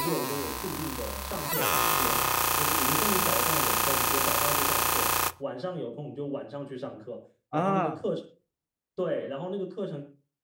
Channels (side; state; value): both; identical; correlation 1.00